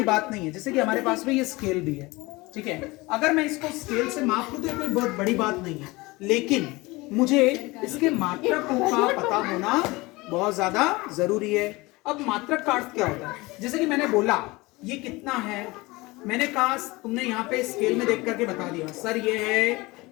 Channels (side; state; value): right; quieter; 22.5 dB